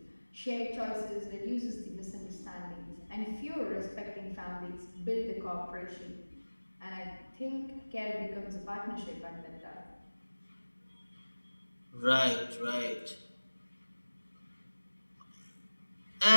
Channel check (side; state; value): both; inverted; correlation -1.00